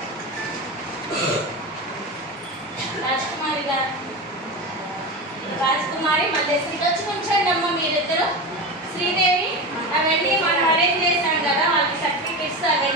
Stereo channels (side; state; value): both; normal; correlation 0.22